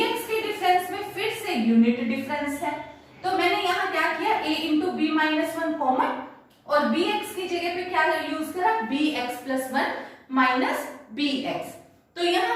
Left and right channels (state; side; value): identical; both; correlation 1.00